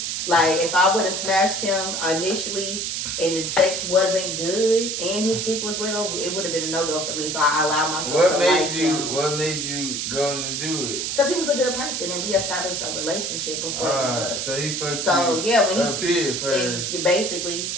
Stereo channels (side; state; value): right; noise; hiss, 2 dB below the sound